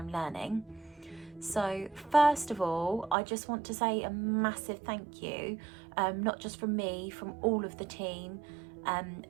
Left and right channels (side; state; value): left; drops out; at 3.2 s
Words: learning. So first of all, I just want to say a massive thank you, not just from me, from all of the team,